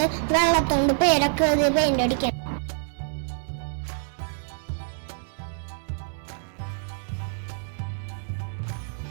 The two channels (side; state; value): left; silent; digital silence